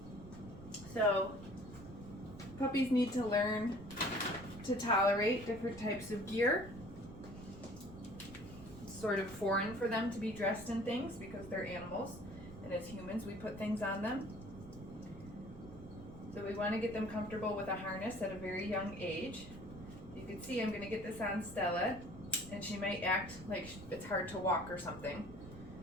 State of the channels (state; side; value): noise; right; rumble, 15 dB below the sound